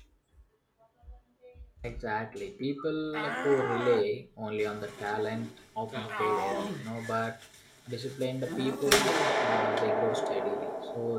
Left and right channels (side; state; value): both; identical; correlation 1.00